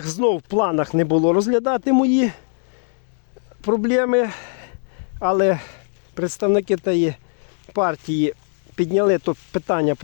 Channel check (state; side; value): silent; right; digital silence